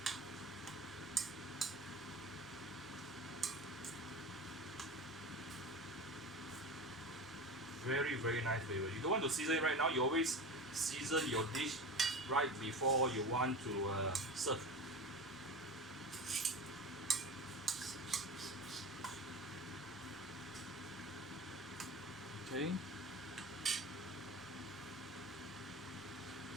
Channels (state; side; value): normal; both; correlation 0.30